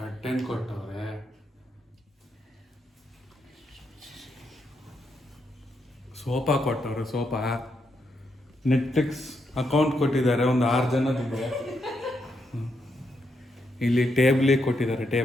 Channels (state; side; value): normal; both; correlation 0.80